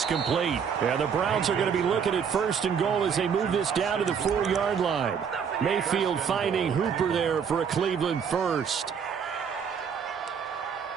complete. And the Browns are going to be looking at 1st and goal as they move this down to the 4-yard line. Mayfield finding Hooper there for a Cleveland first.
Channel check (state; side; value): quieter; left; 7.0 dB